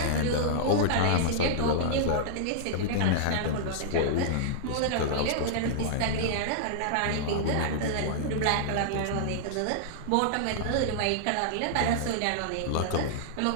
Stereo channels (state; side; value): different; both; correlation -0.01